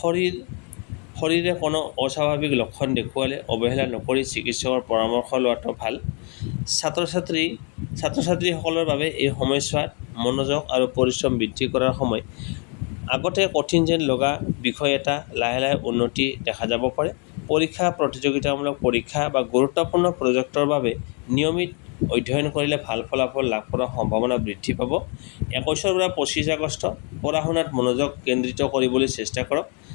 শৰীৰে কোনো অস্বাভাৱিক লক্ষণ দেখুৱালে অৱহেলা নকৰি চিকিৎসকৰ পৰামৰ্শ লোৱাটো ভাল। ছাত্ৰ-ছাত্ৰীসকলৰ বাবে এই সময়ছোৱাত মনোযোগ আৰু পৰিশ্ৰম বৃদ্ধি কৰাৰ সময়। আগতে কঠিন যেন লগা বিষয় এটা লাহে লাহে উন্নতি দেখা যাব পাৰে। পৰীক্ষা, প্ৰতিযোগিতামূলক পৰীক্ষা বা গুৰুত্বপূৰ্ণ প্ৰজেক্টৰ বাবে নিয়মিত অধ্যয়ন কৰিলে ভাল ফলাফল লাভ কৰাৰ সম্ভাৱনা বৃদ্ধি পাব। 21 পৰা 25 আগষ্ট পঢ়া-শুনাত মনোযোগ কেন্দ্ৰিত কৰিবলৈ চেষ্টা কৰক।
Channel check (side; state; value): right; quieter; 36.2 dB